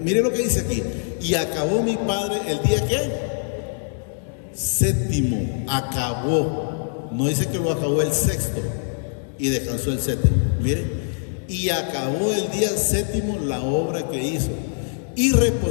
lo que dice aquí. Y acabó mi padre el día ¿qué? Séptimo, acabó, no dice que lo acabó el sexto y descansó el séptimo, mire, y acabó el día séptimo la obra que hizo, y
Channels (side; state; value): right; silent; digital silence